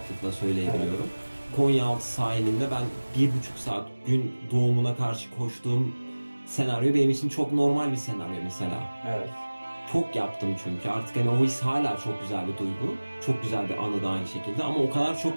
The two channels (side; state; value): both; inverted; correlation -1.00